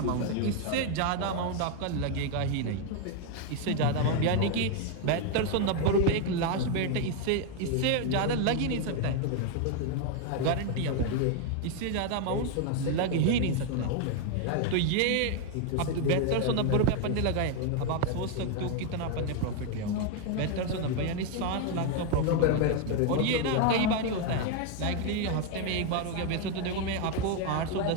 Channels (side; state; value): both; different; correlation 0.01